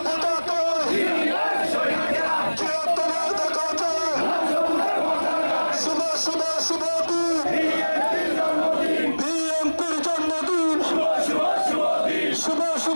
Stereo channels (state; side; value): inverted; both; correlation -1.00